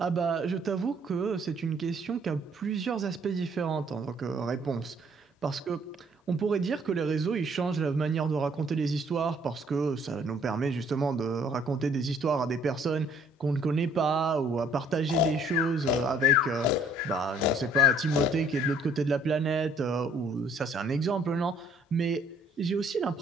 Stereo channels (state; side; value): normal; both; correlation 0.60